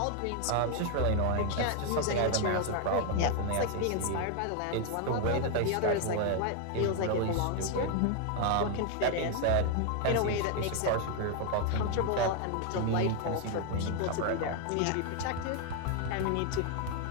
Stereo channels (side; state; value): both; different; correlation 0.01